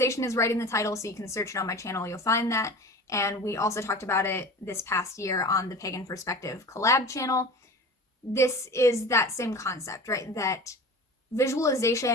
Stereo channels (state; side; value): normal; both; correlation 0.36